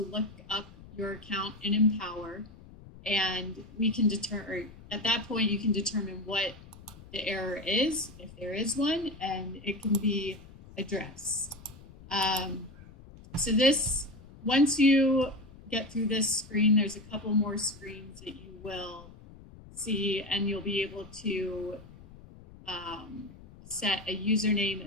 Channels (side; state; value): left; noise; rumble, 19 dB below the sound